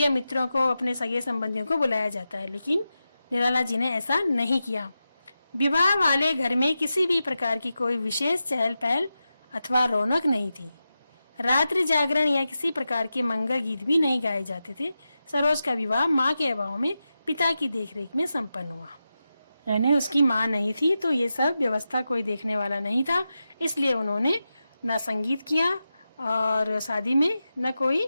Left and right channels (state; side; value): inverted; both; correlation -0.91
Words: मित्रों को, अपने सगे संबंधियों को बुलाया जाता है, लेकिन निराला जी ने ऐसा नहीं किया। विवाह वाले घर में किसी भी प्रकार की कोई विशेष चहल पहल अथवा रौनक नहीं थी। रात्रि जागरण या किसी प्रकार के मंगल गीत भी नहीं गाए जाते थे। सरोज का विवाह माँ के अभाव में पिता की देखरेख में संपन्न हुआ, यानी उसकी माँ नहीं थी तो ये सब व्यवस्था कोई देखने वाला नहीं था, इसलिए उन्होंने न संगीत किया और शादी में न कोई